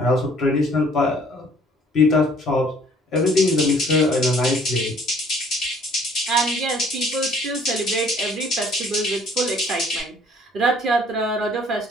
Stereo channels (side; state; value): both; normal; correlation 0.58